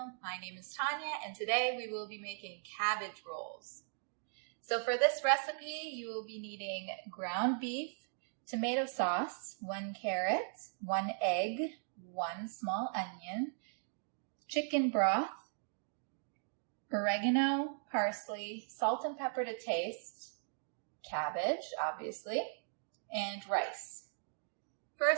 My name is Tanya, and today we will be making cabbage rolls. So for this recipe, you will be needing ground beef, tomato sauce, 1 carrot, 1 egg, 1 small onion, chicken broth, oregano, parsley, salt and pepper to taste, cabbage, obviously, and rice.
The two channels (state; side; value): silent; left; digital silence